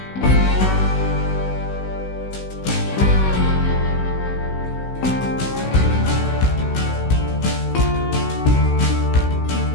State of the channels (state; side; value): late; right; 16 ms